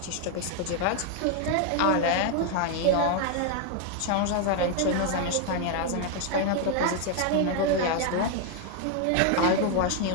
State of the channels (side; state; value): both; different; correlation 0.00